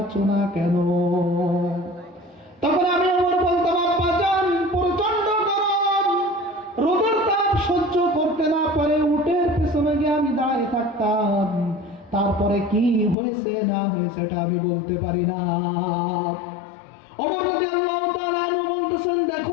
চুনা কেন? তখন আমি ওমর বলতাম, আব্বা জান প্রচন্ড গরম, রোদের তাপ সহ্য করতে না পারে উটের পেছনে গিয়ে আমি দাঁড়িয়ে থাকতাম, তারপরে কি হয়েছে না হয়েছে এটা আমি বলতে পারি না। ওমর রাদিয়াল্লাহু তাআলা আনহু বলতেছেন,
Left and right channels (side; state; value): right; drops out; at 13.2 s